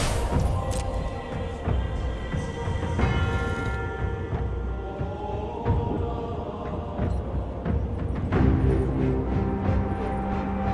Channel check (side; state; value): both; identical; correlation 1.00